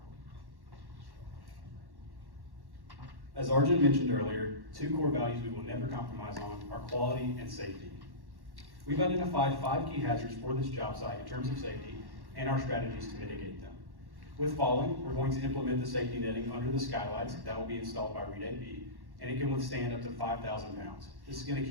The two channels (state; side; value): late; left; 1.1 ms